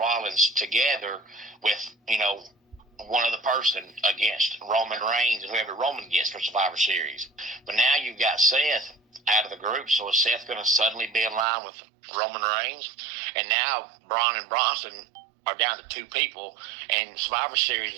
together with one other person against Roman Reigns and whoever Roman gets for Survivor Series. But now you've got Seth out of the group, so is Seth going to suddenly be in line with Roman Reigns? And now Braun and Bronson are down to two people, and Survivor Series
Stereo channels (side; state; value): left; drops out; at 11.5 s